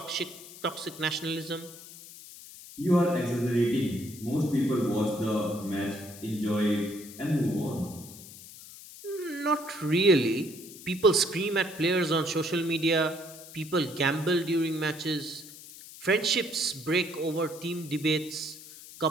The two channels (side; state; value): left; noise; hiss, 16 dB below the sound